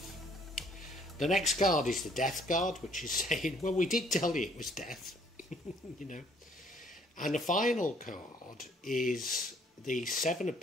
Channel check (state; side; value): normal; both; correlation 0.62